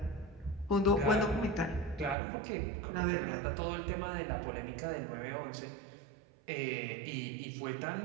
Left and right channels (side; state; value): left; drops out; at 2.1 s